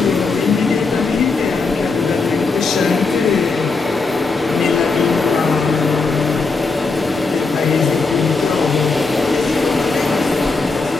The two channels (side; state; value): right; quieter; 4.1 dB